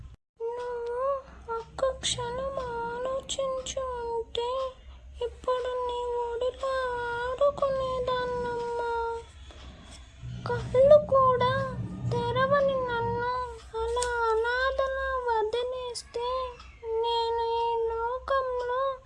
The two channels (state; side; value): identical; both; correlation 1.00